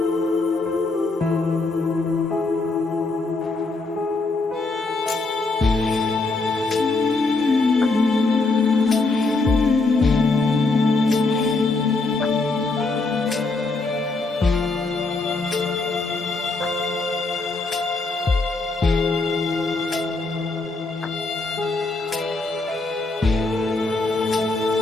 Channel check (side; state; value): right; quieter; 3.5 dB